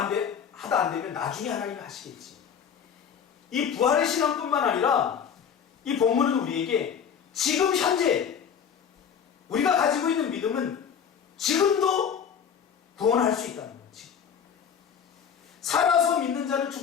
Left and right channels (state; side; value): quieter; right; 7.6 dB